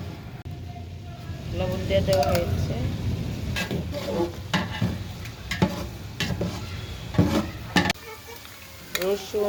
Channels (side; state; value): both; identical; correlation 1.00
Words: লবণ দিয়ে দেওয়া হয়েছে।